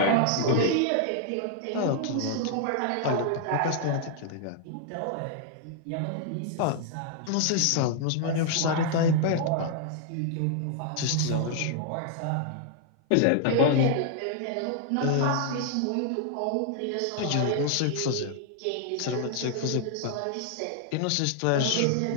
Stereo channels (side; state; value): both; different; correlation -0.01